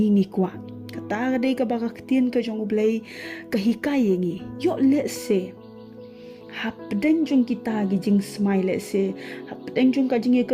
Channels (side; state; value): both; identical; correlation 1.00